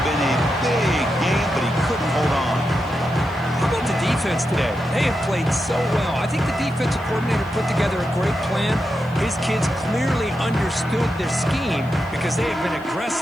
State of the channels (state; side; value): noise; left; hiss, 29 dB below the sound